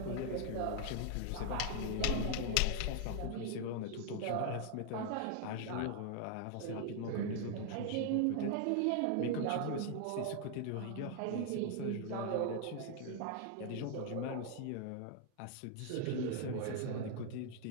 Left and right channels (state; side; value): different; both; correlation 0.00